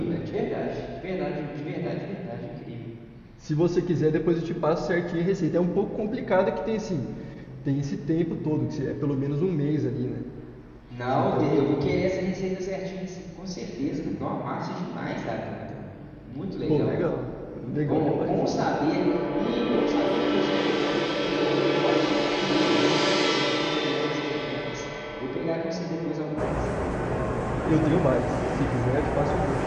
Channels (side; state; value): both; identical; correlation 1.00